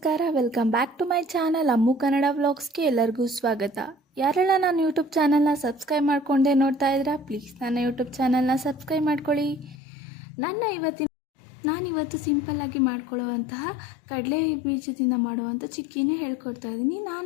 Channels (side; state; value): right; drops out; at 9.8 s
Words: Welcome back to my channel Ammu Kannada ವ್ಲಾಗ್ಸ್ಗೆ ಎಲ್ಲರಿಗೂ ಸ್ವಾಗತ. ಯಾರೆಲ್ಲ ನಾನು ಯೂಟ್ಯೂಬ್ ಚಾನಲ್ನ ಸಬ್ಸ್ಕ್ರೈಬ್ ಮಾಡ್ಕೊಂಡೆ ನೋಡ್ತಾ ಇದ್ದೀರಾ, ಪ್ಲೀಸ್ ನನ್ನ ಯೂಟ್ಯೂಬ್ ಚಾನಲ್ನ ಸಬ್ಸ್ಕ್ರೈಬ್ ಮಾಡ್ಕೊಳ್ಳಿ. ನಾನಿವತ್ತು ಸಿಂಪಲ್ಲಾಗಿ ಮಾಡ್ಕೊಳ್ಳುವಂತಹ ಕಡಲೆ ಬೀಜದಿಂದ ಮಾಡುವಂಥ ಚಿಕ್ಕಿನೇ ಹೇಳ್ಕೊಡ್ತಾ ಇದ್ದೀನಿ.